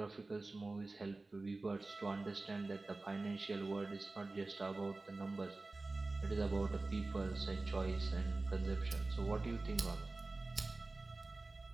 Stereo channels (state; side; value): quieter; left; 3.3 dB